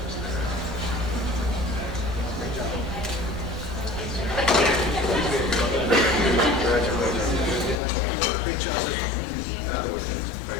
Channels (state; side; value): drops out; right; at 7.8 s